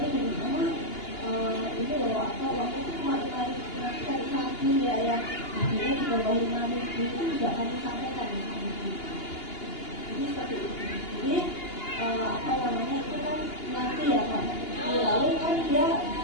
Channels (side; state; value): right; late; 2.8 ms